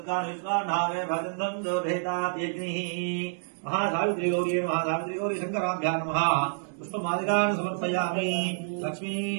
విశ్వానామే భజంతం దోధేతాగ్నిః महासावित्री गौरी शंकराभ्यां नमः पुष्पमालिकान् समर्पयामि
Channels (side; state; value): left; silent; digital silence